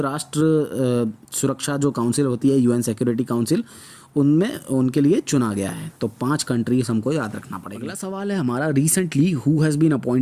सुरक्षा जो काउंसिल होती है यूएन सिक्योरिटी काउंसिल उनमें उनके लिए चुना गया है। तो 5 कंट्रीज हमको याद रखना पड़ेगा। अगला सवाल है हमारा, recently who has been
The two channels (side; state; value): both; identical; correlation 1.00